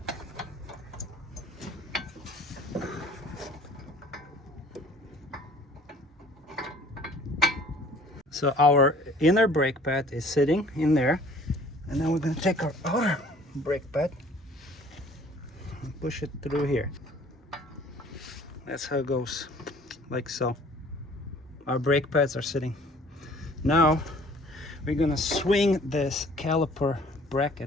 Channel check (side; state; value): both; normal; correlation 0.53